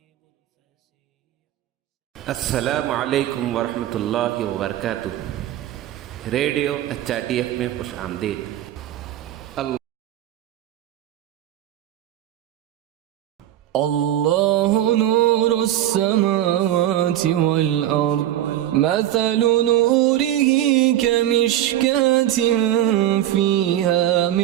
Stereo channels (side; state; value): left; quieter; 12.7 dB